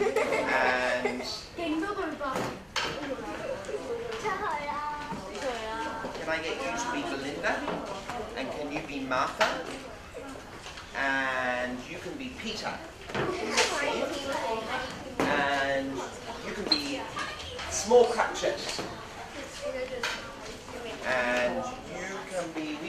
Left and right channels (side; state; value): both; identical; correlation 1.00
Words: can I get you to be Belinda? And can you be Martha? And you can be Peter in this scene. And you can be Small Cratchit. And you can be, we